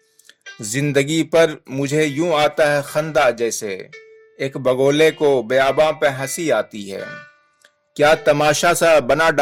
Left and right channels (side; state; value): both; identical; correlation 1.00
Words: زندگی پر مجھے یوں آتا ہے خندہ جیسے ایک بگولے کو بیاباں پہ ہنسی آتی ہے۔ کیا تماشا سا بنا